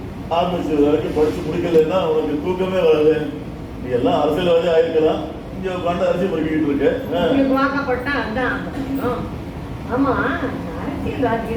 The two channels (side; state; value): both; identical; correlation 1.00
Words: ஆரம்பிச்சு வரைக்கும் படிச்சு முடிக்கலன்னா உனக்கு தூக்கமே வராது. நீ எல்லாம் அரசியல்வாதி ஆயிருக்கலாம், இங்க உட்காந்து அரசியல் படிக்கிட்டு இருக்க. வாக்கப்பட்டா அதான். ஆமா,